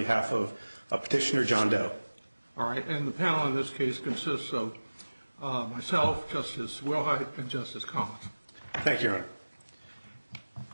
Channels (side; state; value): both; inverted; correlation -1.00